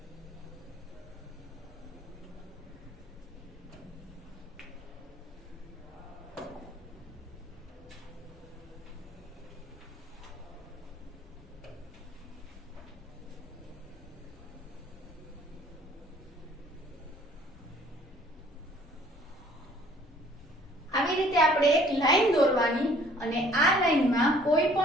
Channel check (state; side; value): normal; both; correlation 0.57